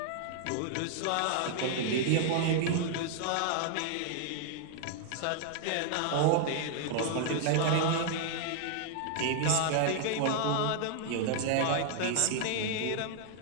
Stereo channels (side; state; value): both; different; correlation 0.00